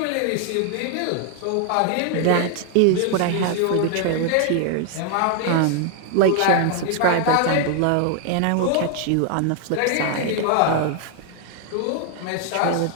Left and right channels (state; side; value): different; both; correlation 0.00